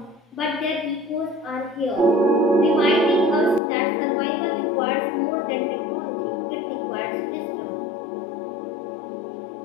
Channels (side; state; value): right; drops out; at 3.6 s